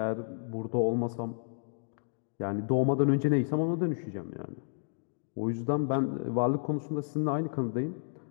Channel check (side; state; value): right; silent; digital silence